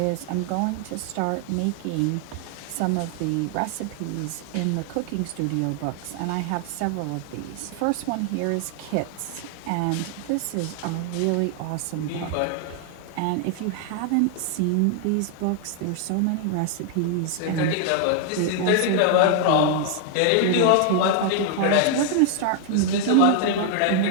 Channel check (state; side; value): different; both; correlation 0.00